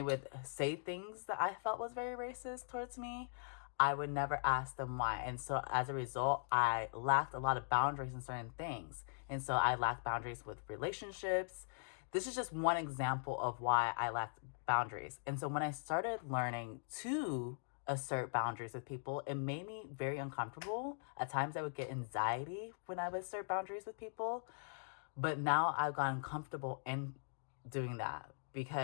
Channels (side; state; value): right; silent; digital silence